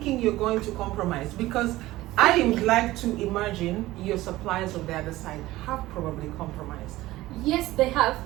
you're going to compromise? Because I would like to imagine your suppliers on the other side have probably compromised. Yes, they have,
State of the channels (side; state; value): left; quieter; 17.2 dB